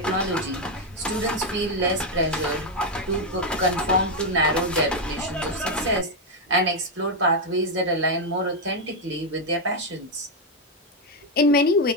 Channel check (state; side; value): normal; both; correlation 0.04